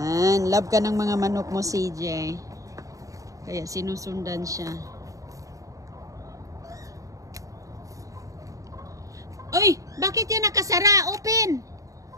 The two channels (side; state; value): left; late; 0.16 ms